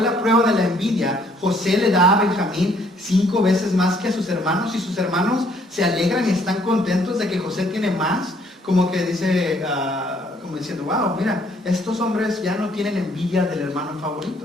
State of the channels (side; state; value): both; normal; correlation 0.64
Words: la prueba de la envidia. José le da a Benjamín 5 veces más que a sus hermanos, y sus hermanos se alegran y están contentos de que José tiene más. Como que dice, como diciendo, wow, mira, estos hombres ya no tienen envidia del hermano